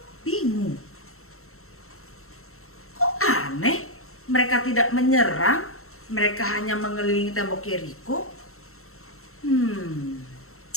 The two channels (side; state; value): right; late; 0.63 ms